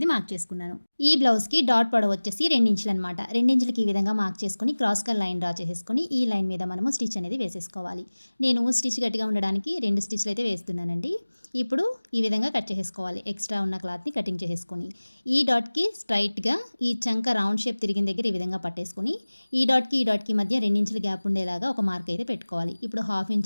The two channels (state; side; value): inverted; both; correlation -1.00